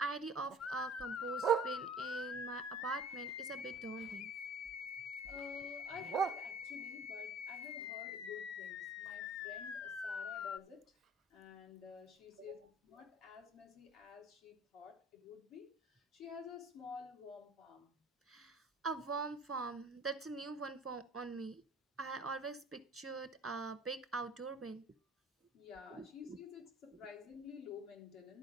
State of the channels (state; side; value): normal; both; correlation 0.46